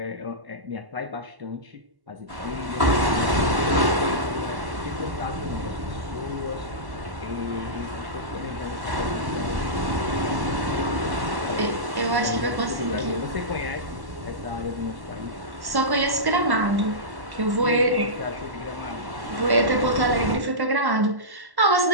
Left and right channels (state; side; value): late; left; 1.1 ms